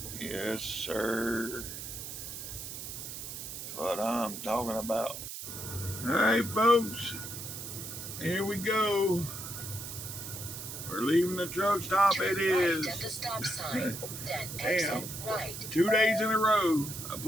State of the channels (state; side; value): noise; right; hiss, 8 dB below the sound